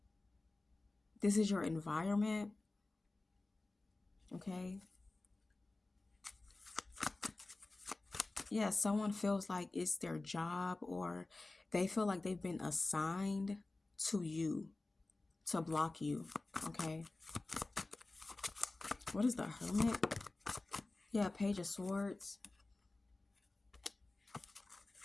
This is your environment. Okay. Yeah, someone feels like it's their job, or they feel like they've been assigned to you to block you. Okay. What is the Hermit? Yeah, Page of Swords.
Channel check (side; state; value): right; quieter; 3.1 dB